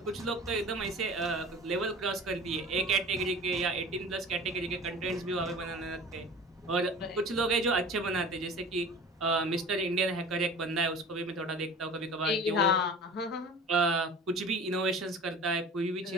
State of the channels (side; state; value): both; normal; correlation 0.40